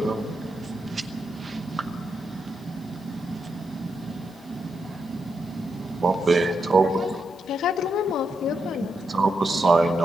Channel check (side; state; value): both; normal; correlation 0.83